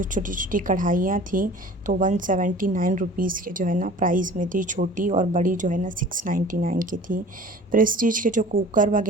छोटी छोटी कढ़ाइयाँ थी, तो 179 रुपीज़ के जो है ना प्राइस में थी। छोटी और बड़ी जो है ना 699 की थी। प्रेस्टीज के जो कुकर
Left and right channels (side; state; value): both; normal; correlation 0.44